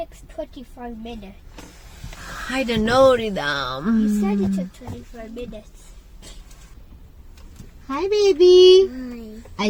25 minutes. I don't know, Ridam. You said it took 25 minutes. Hi, baby. Hi. I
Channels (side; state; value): both; identical; correlation 1.00